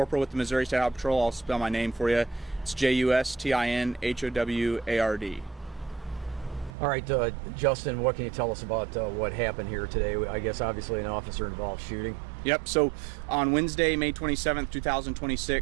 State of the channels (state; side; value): drops out; left; at 6.7 s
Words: with the Missouri State Highway Patrol. I'll spell my name for you. It's JUSTINHOWARD. All right, Justin, what can you tell us about what happened here today? I guess obviously an officer-involved shooting. Yep, so on Wednesday, May 27th,